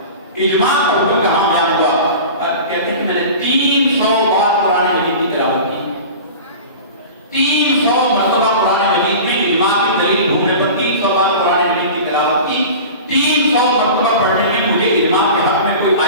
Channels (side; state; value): both; inverted; correlation -0.35